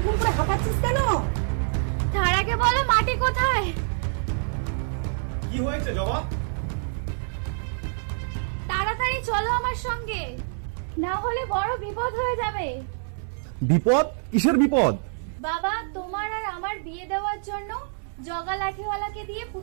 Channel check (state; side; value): silent; left; digital silence